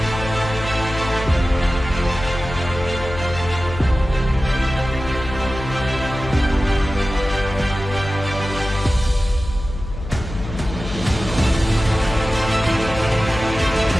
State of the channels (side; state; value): left; noise; hum, 9 dB below the sound